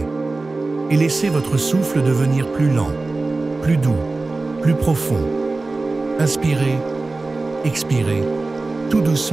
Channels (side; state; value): left; quieter; 3.4 dB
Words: Et laissez votre souffle devenir plus lent, plus doux, plus profond. Inspirez, expirez, tout